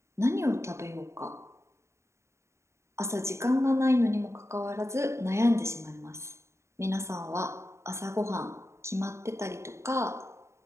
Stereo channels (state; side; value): late; left; 0.14 ms